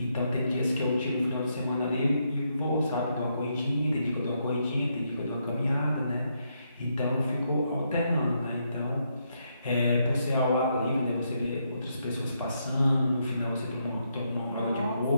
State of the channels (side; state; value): both; inverted; correlation -0.79